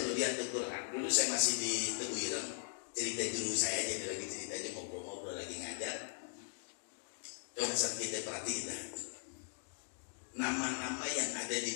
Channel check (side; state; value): right; silent; digital silence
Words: lihat Al-Quran, dulu saya masih di Teguh Ireng, cerita guru saya aja, lagi cerita aja, ngobrol-ngobrol lagi ngajar. Coba saat kita perhatiin, nama-nama yang ada di